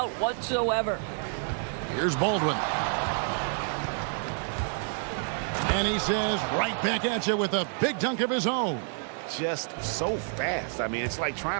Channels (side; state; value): left; silent; 59 dB below the other